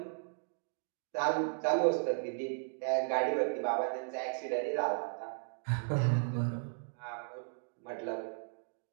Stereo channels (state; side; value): silent; left; digital silence